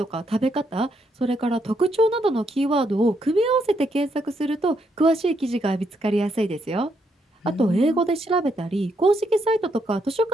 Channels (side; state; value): both; normal; correlation 0.77